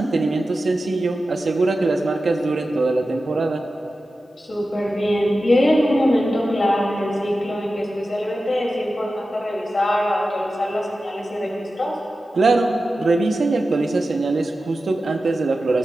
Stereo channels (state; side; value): normal; both; correlation 0.93